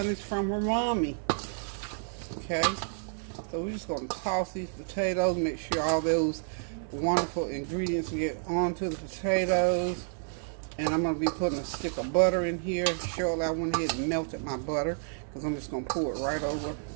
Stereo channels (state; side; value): silent; left; 58 dB below the other